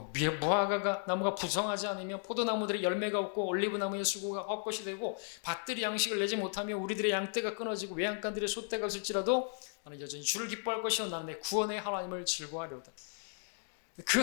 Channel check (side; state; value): right; silent; 54 dB below the other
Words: 무화과 나무가 부성하지 않으며 포도나무들의 열매가 없고 올리브나무의 수고가 헛것이 되고 밭들이 양식을 내지 못하며 우리들의 양떼가 끊어지고 외양간들의 소떼가 없을지라도 나는 여전히 주를 기뻐할 것이요 나는 내 구원의 하나님을 즐거워하려다. 그